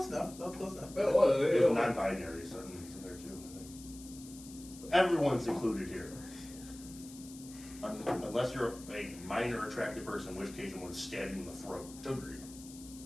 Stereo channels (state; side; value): noise; left; hiss, 17 dB below the sound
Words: enough. Close enough. There's non-binary certain in there too, I think. Everyone's included here. Unless you're a minor attractive person, in which case I'm going to stab you in the throat. Agreed.